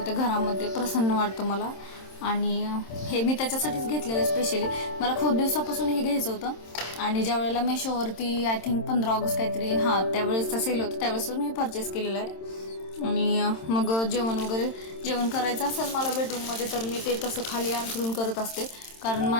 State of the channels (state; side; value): late; right; 27 ms